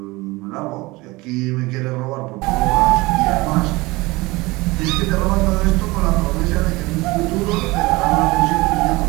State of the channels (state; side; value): quieter; left; 22.2 dB